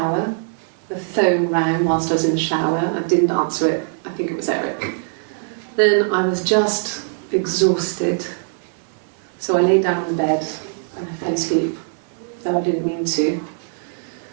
The phone rang whilst I was in the shower. I didn't answer it. I think it was Eric. Then I was just exhausted. So I lay down on the bed and I fell asleep, though I didn't mean to.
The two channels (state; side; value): silent; left; digital silence